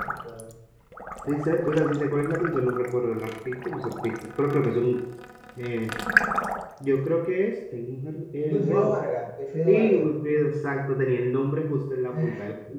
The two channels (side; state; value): both; identical; correlation 1.00